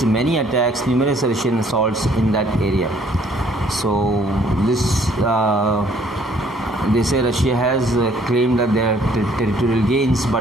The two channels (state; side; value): normal; both; correlation 0.62